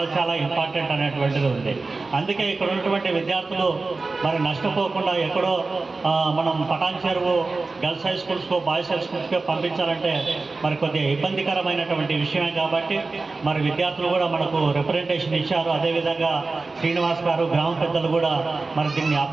చాలా ఇంపార్టెంట్ అనేటువంటిది ఉంది. అందుకే ఇక్కడ ఉన్నటువంటి విద్యార్థులు మరి నష్టపోకుండా ఎక్కడో మనం పటాన్ చెరువు గర్ల్స్ హై స్కూల్స్కో బాయ్స్ హై స్కూల్స్కో పంపించాలంటే మరి కొద్దిగా ఇబ్బందికరమైనటువంటి విషయమే. కాబట్టి మరి విద్యార్థులు కూడా మనకు రిప్రజెంటేషన్ ఇచ్చారు. అదేవిధంగా శ్రీనివాస్ గారు గ్రామ పెద్దలు కూడా మరి దీన్ని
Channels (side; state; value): left; quieter; 3.7 dB